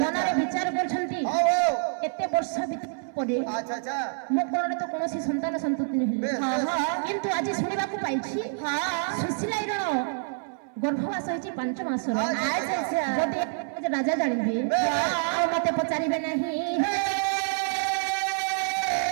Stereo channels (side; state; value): left; silent; 57 dB below the other